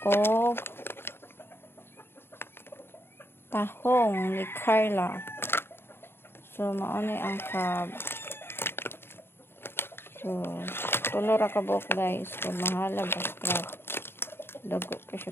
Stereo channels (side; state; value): right; late; 0.11 ms